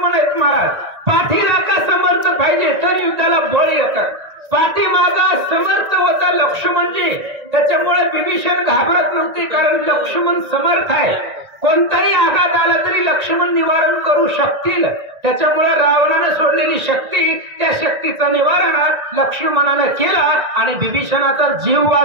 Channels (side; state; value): left; late; 1.9 ms